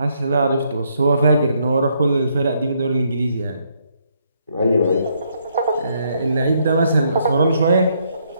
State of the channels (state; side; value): inverted; both; correlation -0.73